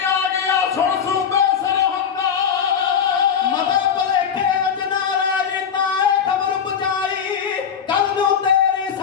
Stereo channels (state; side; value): quieter; right; 7.4 dB